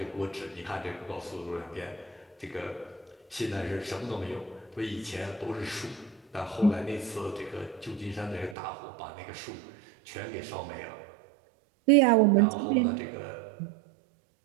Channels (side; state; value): left; drops out; at 8.6 s